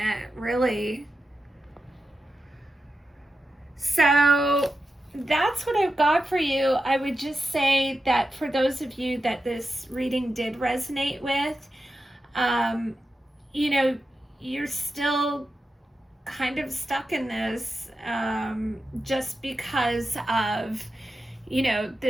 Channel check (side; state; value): both; normal; correlation 0.90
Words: really. So that's what I've got for you. I would just say that for those of you that this reading did resonate with, you're still kind of stuck in this just because of,